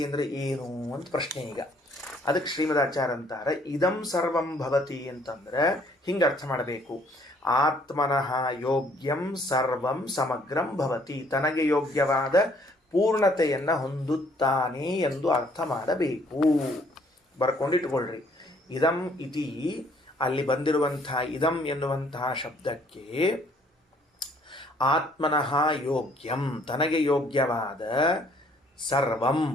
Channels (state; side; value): normal; both; correlation 0.62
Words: ಅಂದ್ರೆ ಏನು ಅಂತ ಪ್ರಶ್ನೆ. ಈಗ ಅದಕ್ಕೆ ಶ್ರೀಮದಾಚಾರ್ಯ ಅಂತಾರೆ, ಇದಂ ಸರ್ವಂ ಭವತಿ ಅಂತಂದ್ರೆ ಹಿಂಗೆ ಅರ್ಥ ಮಾಡಬೇಕು. ಆತ್ಮನಃ ಯೋಗ್ಯಂ ಸರ್ವಂ ಸಮಗ್ರಂ ಭವತಿ, ತನಗೆ ಯೋಗ್ಯವಾದ ಪೂರ್ಣತೆಯನ್ನು ಹೊಂದುತ್ತಾನೆ ಎಂದು ಅರ್ಥ ಮಾಡಬೇಕು. ಬರ್ಕೊಂಡಿಟ್ಕೊಳ್ರಿ. ಇದಂ ಇತಿ ಅಲ್ಲಿ ಬಂದಿರುವಂತಹ ಇದಂ ಎನ್ನುವಂತಹ ಶಬ್ದಕ್ಕೆ ಆತ್ಮನಃ ಯೋಗ್ಯಂ, ತನಗೆ ಯೋಗ್ಯವಾದ ಸರ್ವಂ